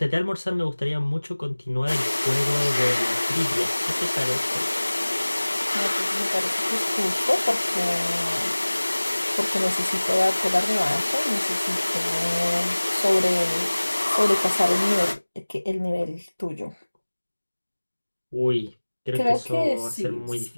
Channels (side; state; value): both; inverted; correlation -1.00